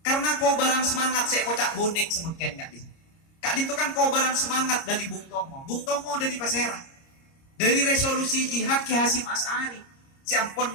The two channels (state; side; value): late; right; 30 ms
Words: Karena kobaran semangat saya kocak bonek semengken Kak Din. Kak Din itu kan kobaran semangat dari Bung Tomo. Bung Tomo dari Pasera. Dari resolusi jihad Ki Hasyim Asy'ari. Si ampun